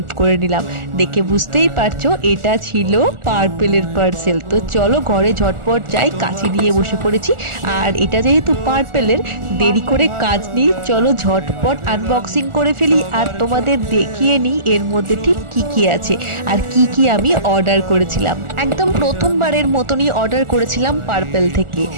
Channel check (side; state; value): left; late; 1.4 ms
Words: করে নিলাম। দেখে বুঝতেই পারছো এটা ছিল পার্পেলের পার্সেল। তো চলো ঘরে ঝটপট যাই, কাছে নিয়ে বসে পড়েছি। আর এটা যেহেতু পার্পেলের, দেরি করে কাজ নেই, চলো ঝটপট আনবক্সিং করে ফেলি আর তোমাদের দেখিয়ে নিই এর মধ্যে ঠিক কি কি আছে আর কি কি আমি অর্ডার করেছিলাম। একদম প্রথমবারের মতনই অর্ডার করেছিলাম পার্পেল থেকে,